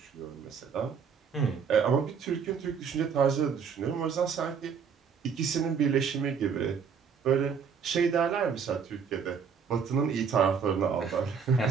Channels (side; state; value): left; quieter; 6.5 dB